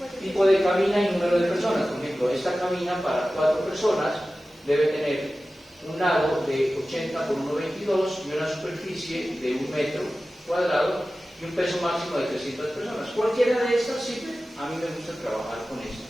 tipo de cabina y número de personas. Por ejemplo, esta cabina para 4 personas debe tener un lado de 80 por 1,22 y una superficie de 1 metro cuadrado y un peso máximo de 300 personas. Cualquiera de estas sirve. A mí me gusta trabajar con esto,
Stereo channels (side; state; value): both; normal; correlation 0.95